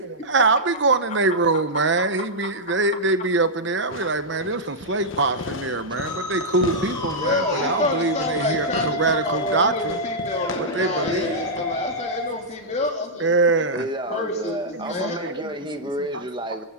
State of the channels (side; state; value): both; normal; correlation -0.08